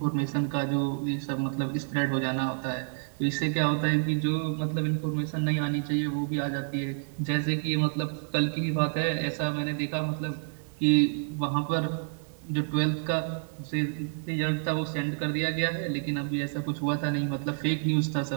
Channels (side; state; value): left; silent; digital silence